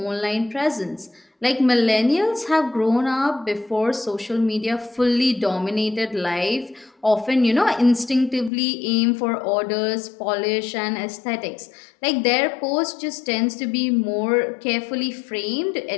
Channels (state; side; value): drops out; right; at 8.5 s